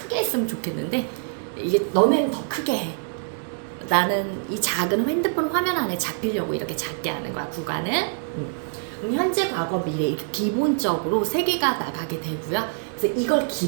했으면 좋겠는데 이게 너네는 더 크게 해. 나는 이 작은 핸드폰 화면 안에 잡히려고 이렇게 작게 하는 거야. 구간은. 그럼 현재, 과거, 미래 이렇게 기본적으로 3개가 나가게 되고요. 그래서 이걸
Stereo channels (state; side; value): silent; left; 59 dB below the other